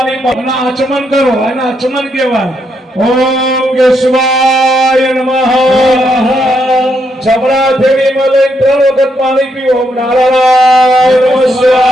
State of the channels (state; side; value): normal; both; correlation 0.78